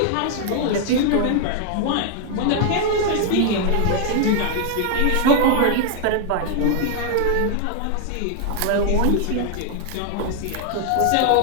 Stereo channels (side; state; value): both; different; correlation 0.00